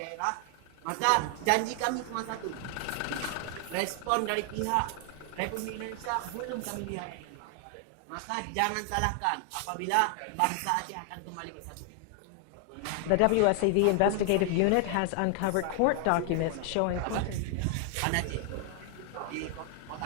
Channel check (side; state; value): both; different; correlation 0.00